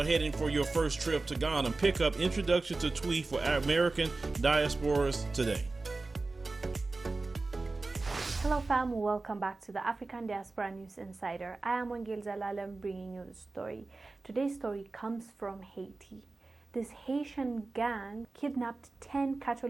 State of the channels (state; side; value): quieter; left; 3.5 dB